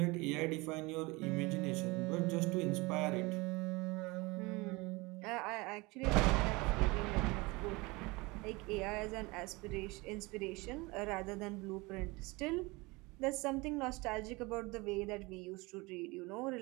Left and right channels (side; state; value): left; quieter; 24.4 dB